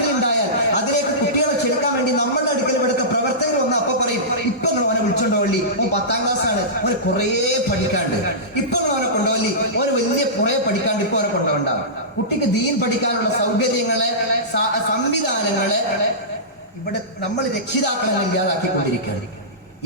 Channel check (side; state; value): both; normal; correlation -0.19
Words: അതിലേക്ക് കുട്ടികളെ ക്ഷണിക്കാൻ വേണ്ടി നമ്മളുടെ അടുക്കൽ ഇവിടുത്തെ പ്രവർത്തകർ വന്ന് അപ്പൊ പറയും, ഇപ്പൊ അവനെ വിളിച്ചോണ്ടോളി, ഓൻ 10ാം ക്ലാസ്സാണ്, അവന് കുറേ പഠിക്കാണ്ട്. ഇപ്പൊ അവനെ കൊണ്ടുപോലി, അവന് വലിയ കുറേ പഠിക്കാണ്ട്, ഇപ്പൊ അവനെ കൊണ്ടുപോകണ്ടാവും. കുട്ടിക്ക് ദീൻ പഠിക്കാനുള്ള സൗകര്യങ്ങളെ, സംവിധാനങ്ങളെ ഇവിടെ നമ്മൾ രക്ഷിതാക്കളെ ഇല്ലാതാക്കിക്കൊണ്ടിരിക്കുകയാണ്.